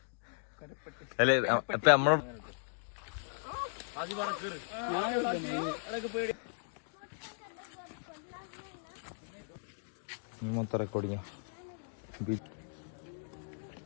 കരപ്പെട്ടി. അല്ലേ അപ്പൊ നമ്മള് മൊത്തം റെക്കോർഡിങ്.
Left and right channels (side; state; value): right; silent; digital silence